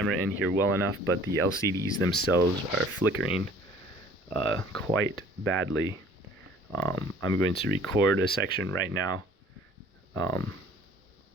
in here well enough, but the LCDs themselves are flickering quite badly. I'm going to record a section right now onto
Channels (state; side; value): normal; both; correlation 0.52